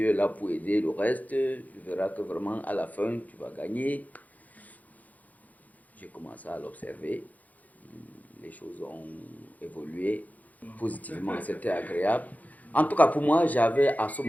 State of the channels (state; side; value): late; right; 0.078 ms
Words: est là pour aider le reste. Tu verras que vraiment à la fin, tu vas gagner. J'ai commencé à l'observer. Les choses ont évolué positivement, c'était agréable. En tout cas, pour moi, j'avais à ce